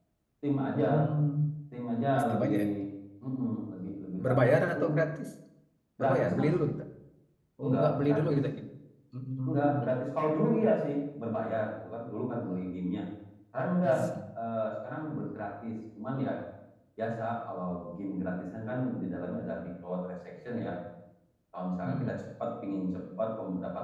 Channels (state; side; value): identical; both; correlation 1.00